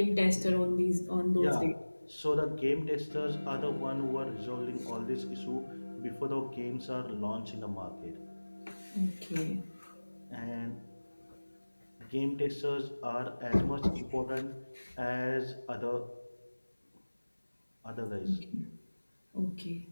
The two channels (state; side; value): inverted; both; correlation -1.00